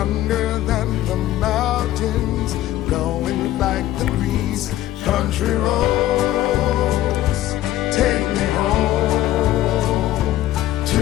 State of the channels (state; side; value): quieter; right; 14.2 dB